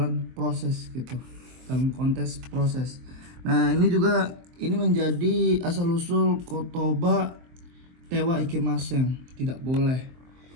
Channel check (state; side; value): late; left; 23 ms